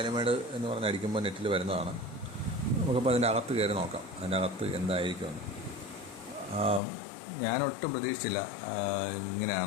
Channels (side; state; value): right; drops out; at 6.8 s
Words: എന്ന് പറഞ്ഞ് അടിക്കുമ്പോൾ നെറ്റിൽ വരുന്നതാണ്. നമുക്കപ്പോൾ അതിൻ്റെ അകത്ത് കയറി നോക്കാം, അതിൻ്റെ അകത്ത് എന്തായിരിക്കുമെന്ന്. ഞാനൊട്ടും പ്രതീക്ഷിച്ചില്ല